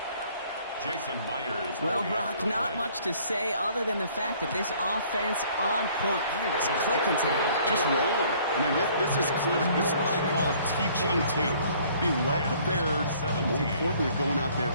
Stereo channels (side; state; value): both; inverted; correlation -0.58